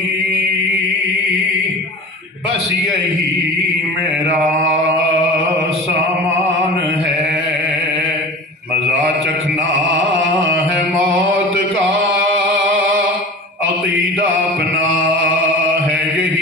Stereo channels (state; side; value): normal; both; correlation 0.35